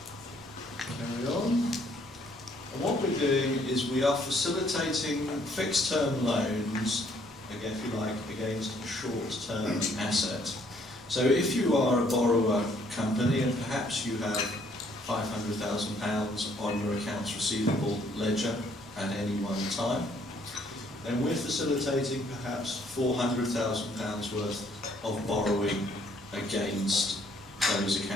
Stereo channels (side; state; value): both; normal; correlation 0.65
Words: Carry on. And what we're doing is we are facilitating fixed-term loans, again, if you like, against a short-term asset. So if you are a borrower company and perhaps you have £500,000 on your accounts receivable ledger at any one time, then we're facilitating perhaps £400,000 worth of borrowing against those